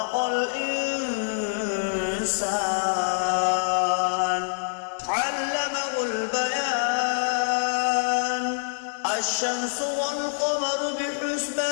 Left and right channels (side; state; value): right; silent; 61 dB below the other